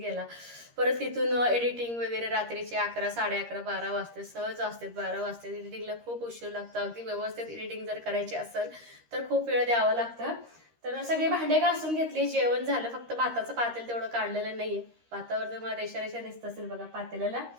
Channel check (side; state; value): left; late; 13 ms